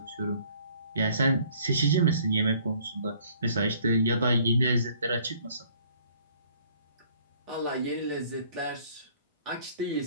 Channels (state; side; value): inverted; both; correlation -0.58